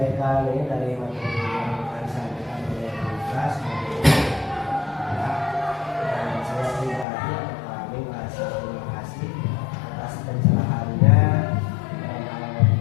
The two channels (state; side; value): drops out; right; at 7.1 s